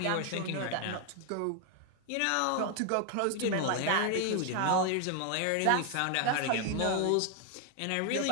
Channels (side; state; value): both; different; correlation 0.00